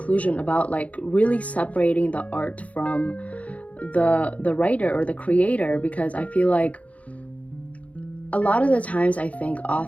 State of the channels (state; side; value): late; right; 0.067 ms